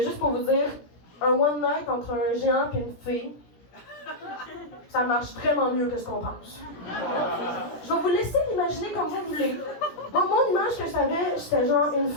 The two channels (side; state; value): right; late; 17 ms